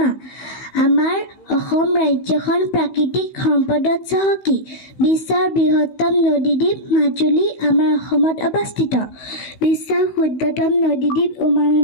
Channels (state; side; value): late; right; 16 ms